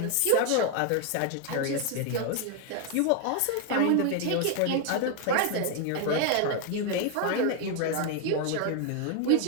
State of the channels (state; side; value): different; both; correlation 0.01